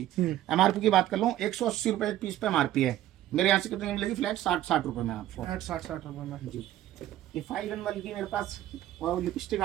MRP की बात कर लूँ 180 रुपए एक पीस पे MRP है, मेरे यहाँ से कितने मिलेगी फ्लैट 60 रुपए में आपको, 60 रुपए में जी। ये 5-in-1 की मेरे पास लिपस्टिक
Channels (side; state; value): left; quieter; 13.3 dB